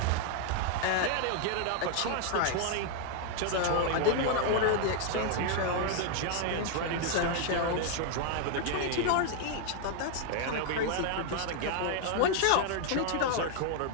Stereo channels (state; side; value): different; both; correlation 0.00